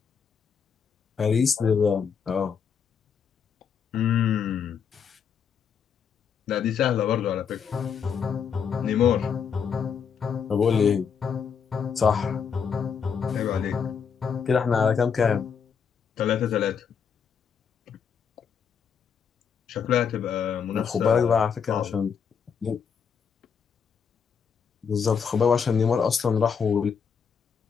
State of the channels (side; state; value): right; quieter; 6.8 dB